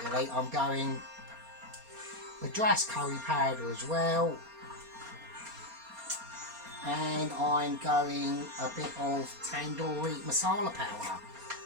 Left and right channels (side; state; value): left; late; 4.3 ms